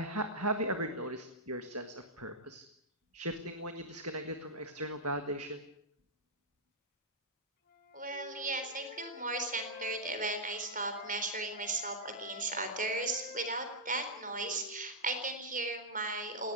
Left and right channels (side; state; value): both; normal; correlation -0.09